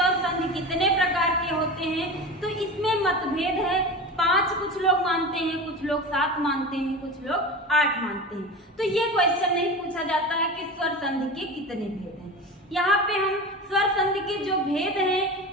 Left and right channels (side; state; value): both; normal; correlation 0.29